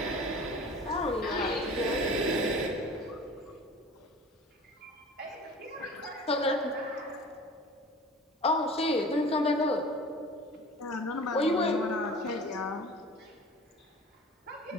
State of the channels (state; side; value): normal; both; correlation 0.41